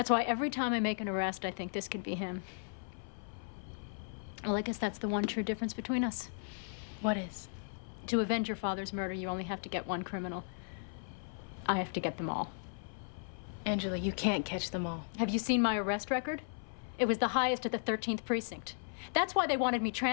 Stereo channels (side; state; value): right; silent; 54 dB below the other